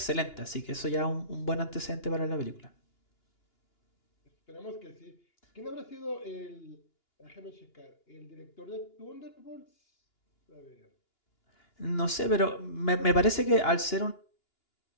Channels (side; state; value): right; late; 2.9 ms